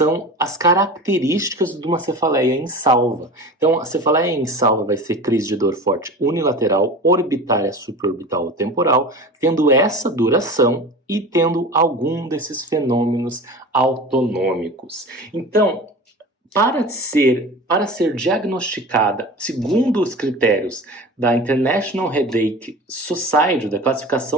as características de uma cefaleia insalva. Então, a cefaleia insalva vai ser crise de dor forte unilateral, orbitária, supraorbital ou temporal, tendo essa duração e tendo algum desses fenômenos autonômicos. Então, para ser diagnosticada, segundo os critérios da International Headache Society, da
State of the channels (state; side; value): normal; both; correlation 0.34